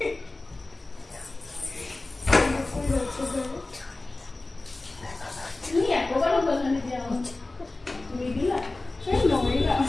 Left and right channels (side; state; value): right; quieter; 3.0 dB